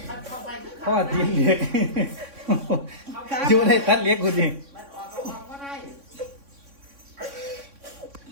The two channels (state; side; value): late; left; 3.6 ms